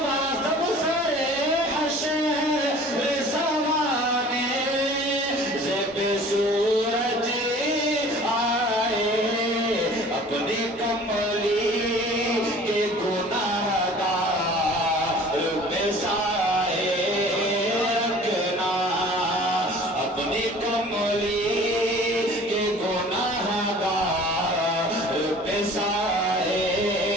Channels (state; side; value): normal; both; correlation 0.47